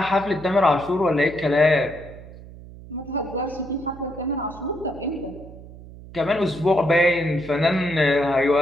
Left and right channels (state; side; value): noise; right; hum, 17 dB below the sound